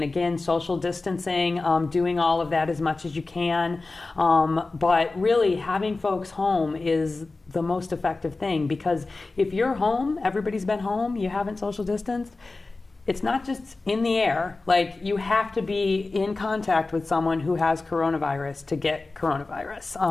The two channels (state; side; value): quieter; right; 3.5 dB